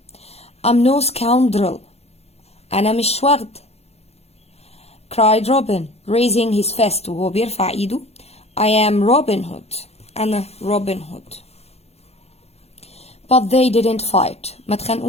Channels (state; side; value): late; right; 0.30 ms